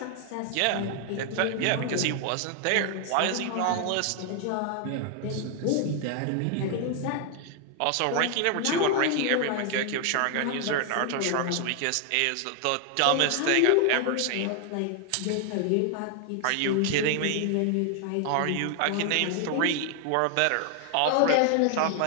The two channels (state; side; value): different; both; correlation 0.00